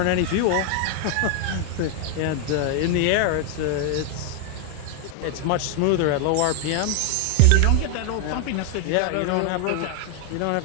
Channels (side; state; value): both; different; correlation 0.00